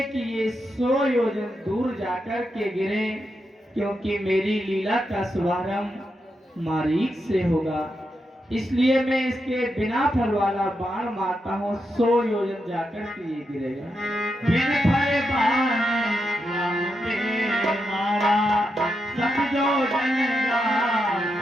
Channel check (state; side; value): normal; both; correlation 0.85